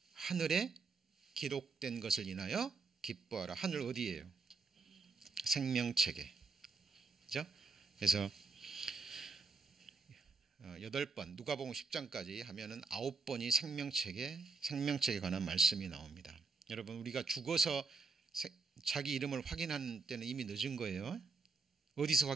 하늘에 기록된 것을 인하여 기뻐하라. 하늘 어디예요? 생명책에. 그죠? 그래서 8번 누가복음 10장까지 하면은 9번이 생명책에 관한 말씀이 나옵니다. 여러분 우리가 죽어서 자기 이름을 확인하는 때는 이미 늦은 거예요. 어디서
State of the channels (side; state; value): left; quieter; 4.3 dB